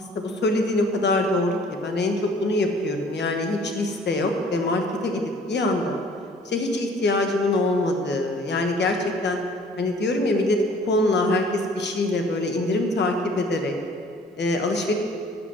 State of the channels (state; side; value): normal; both; correlation 0.53